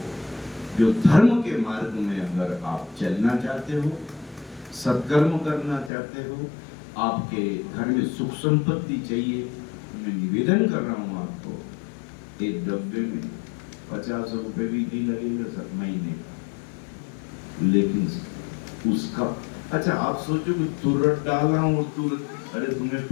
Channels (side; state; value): right; drops out; at 5.9 s